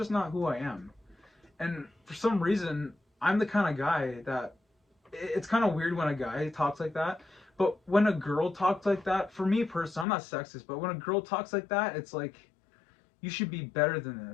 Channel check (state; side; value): drops out; right; at 10.1 s